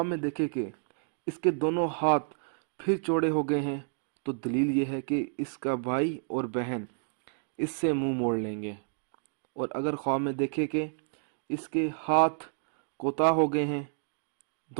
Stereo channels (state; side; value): silent; left; digital silence